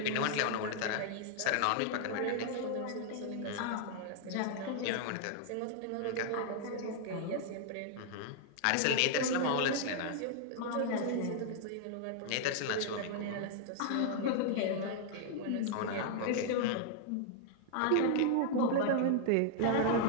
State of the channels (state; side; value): different; both; correlation 0.00